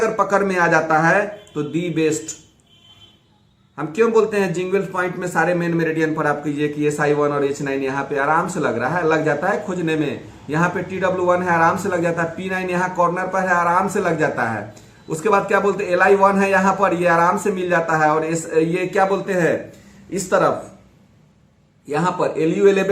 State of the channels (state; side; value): identical; both; correlation 1.00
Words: पकड़ में आ जाता है तो दी बेस्ट हम क्यों बोलते हैं जिंगवेल्स पॉइंट में सारे मेन मेरिडियन पर आप कीजिए कि SI1 और H9 यहाँ पे आराम से लग रहा है, लग जाता है खोजने में। यहाँ पे TW1 है, आराम से लग जाता है। P9 यहाँ कॉर्नर पर है, आराम से लग जाता है। उसके बाद क्या बोलते हैं LI1 है यहाँ पर, ये आराम से मिल जाता है। और ये क्या बोलते हैं इस तरफ यहाँ पर